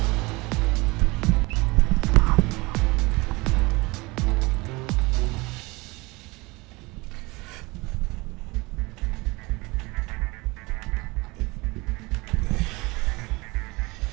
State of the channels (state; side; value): quieter; left; 24.1 dB